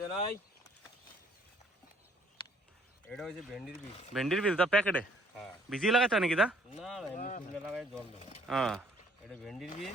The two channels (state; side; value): normal; both; correlation 0.61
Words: নাই। এটা হচ্ছে ভেন্ডির বীজ। ভেন্ডির বীজ দা প্যাকেটে হ্যাঁ, ভিজিয়ে লাগাতে হয় নাকি দা? না না, এমনি শুকনো লাগাই জল দেবো। হ্যাঁ, এটা ভেন্ডির